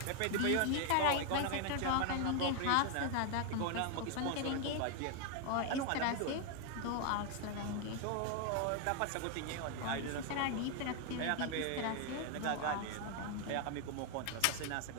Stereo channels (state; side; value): different; both; correlation 0.00